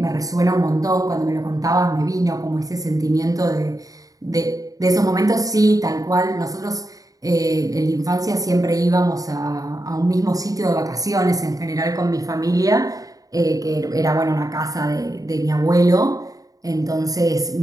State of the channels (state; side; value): late; left; 0.17 ms